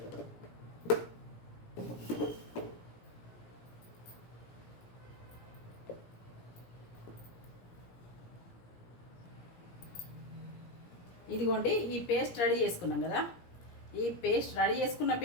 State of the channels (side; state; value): right; late; 17 ms